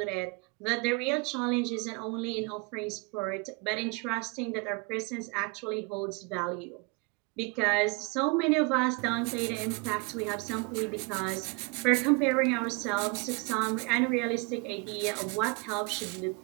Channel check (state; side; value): quieter; left; 29.9 dB